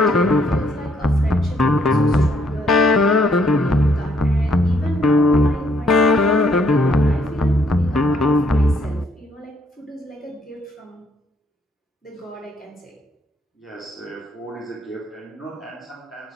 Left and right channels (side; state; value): both; normal; correlation 0.69